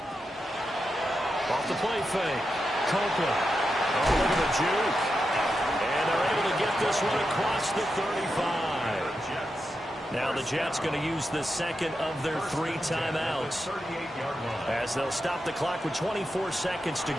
Off the play fake. Copeland. Oh, look at the juke. And they're able to get this one across the 35. Now the Jets going to use the second of their 3 timeouts as they'll stop the clock with 24 seconds to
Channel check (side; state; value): both; normal; correlation 0.88